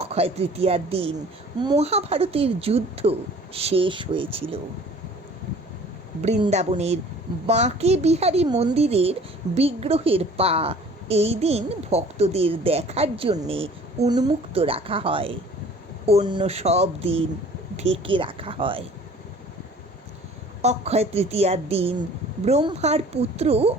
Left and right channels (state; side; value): normal; both; correlation 0.49